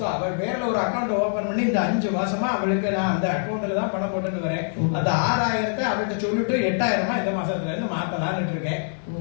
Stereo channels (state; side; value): silent; right; digital silence